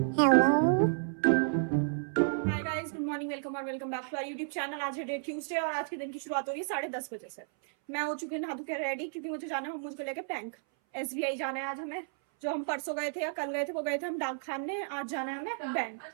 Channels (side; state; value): left; silent; 56 dB below the other